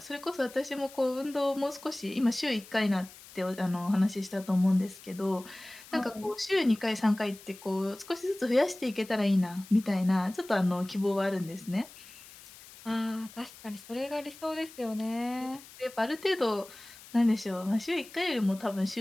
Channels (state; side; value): noise; left; hiss, 19 dB below the sound